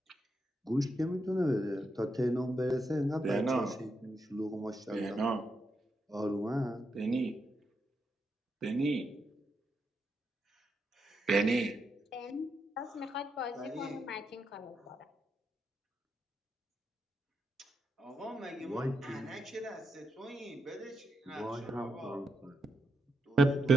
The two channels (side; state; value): both; normal; correlation 0.83